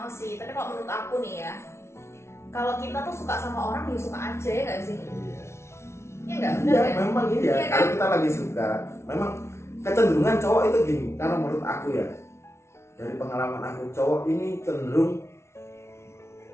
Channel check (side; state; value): right; late; 0.13 ms